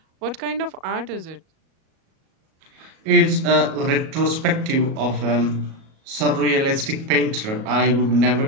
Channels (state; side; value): late; left; 37 ms